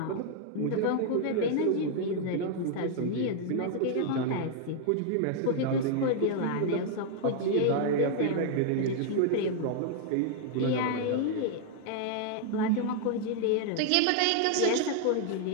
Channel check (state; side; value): different; both; correlation 0.00